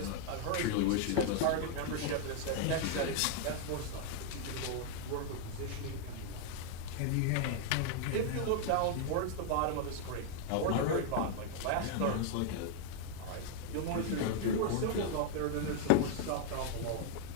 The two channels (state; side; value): different; both; correlation 0.00